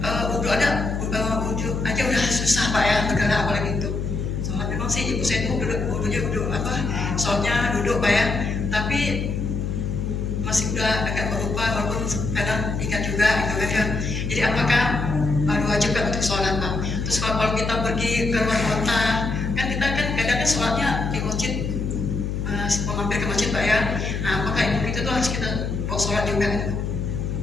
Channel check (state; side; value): noise; left; hum, 2 dB below the sound